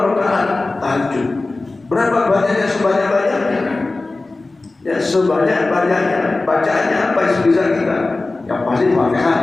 rakaat tahajud. Berapa banyaknya? Sebanyak-banyaknya. Ya sebanyak-banyaknya. Bacaannya apa yang bisa kita? Yang pasti Fatihah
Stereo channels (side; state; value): right; quieter; 3.3 dB